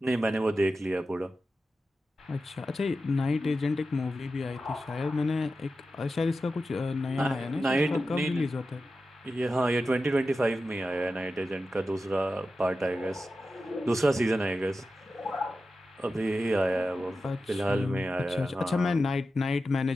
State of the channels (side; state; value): both; normal; correlation 0.92